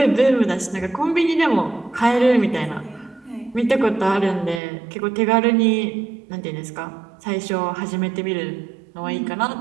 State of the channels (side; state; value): left; drops out; at 4.6 s